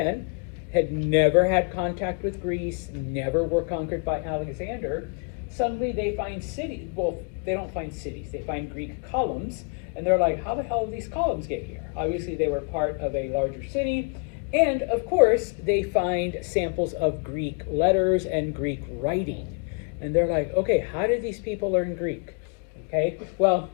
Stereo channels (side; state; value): right; quieter; 36.8 dB